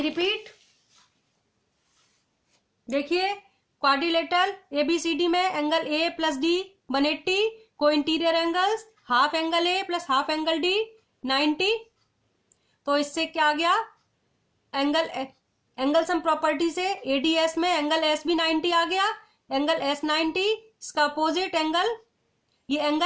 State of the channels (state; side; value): identical; both; correlation 1.00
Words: रिपीट, देखिए क्वाड्रिलेटरल एबीसीडी में एंगल ए प्लस डी 180, को interior angles half angle A plus half angle D 90। तो इससे क्या आ गया, एंगल सम प्रॉपर्टी से एडीएस में एंगल एस भी 90 आ गया, एंगल एस 90, इसका अपोजिट एंगल, ये